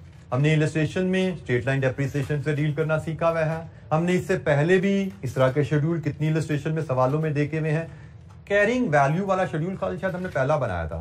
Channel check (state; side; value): identical; both; correlation 1.00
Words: हमने इलस्ट्रेशन में स्ट्रेट लाइन डेप्रिसिएशन से डील करना सीखा हुआ है। हमने इससे पहले भी इस तरह के शेड्यूल कितनी इलस्ट्रेशन में सवालों में देखे हुए हैं। कैरिंग वैल्यू वाला शेड्यूल शायद हमने पहला बनाया